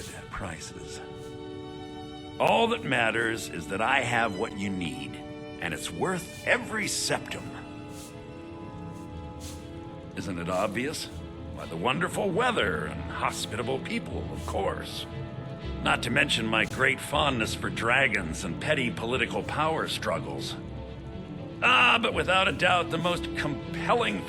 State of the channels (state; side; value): identical; both; correlation 1.00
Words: prices. All that matters is that I have what you need, and it's worth every septum. Isn't it obvious? Why, the wonderful weather and hospitable people, of course. Not to mention my great fondness for dragons and petty political power struggles. But without a doubt, the most compelling